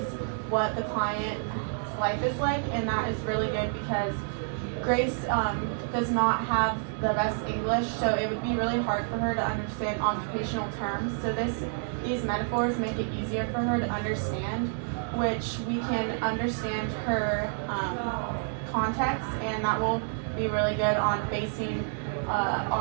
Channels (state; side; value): silent; left; 59 dB below the other